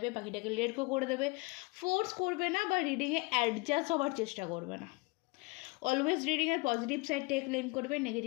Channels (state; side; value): quieter; right; 27.2 dB